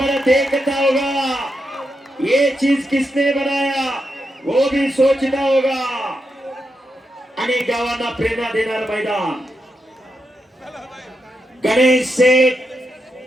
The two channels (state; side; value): normal; both; correlation 0.85